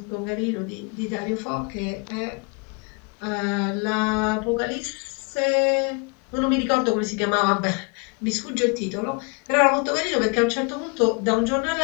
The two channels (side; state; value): right; quieter; 32.2 dB